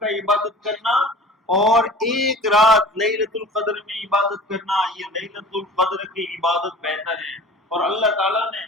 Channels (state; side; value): normal; both; correlation 0.41